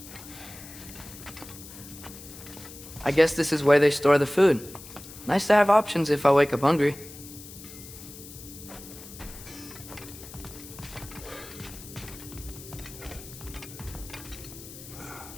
I guess this is where they store the food. Nice to have options if I wake up hungry.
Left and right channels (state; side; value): noise; left; hiss, 15 dB below the sound